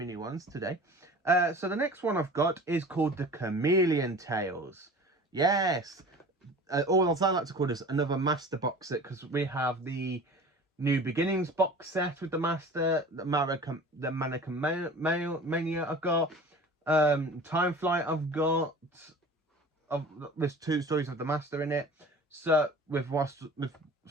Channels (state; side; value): normal; both; correlation 0.41